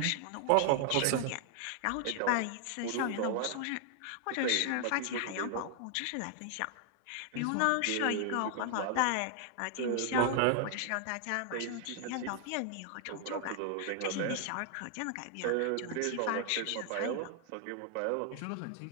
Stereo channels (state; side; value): different; both; correlation 0.00